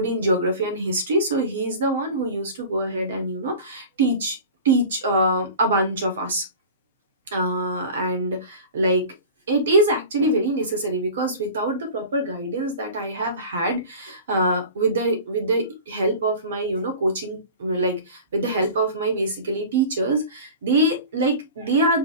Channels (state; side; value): inverted; both; correlation -0.37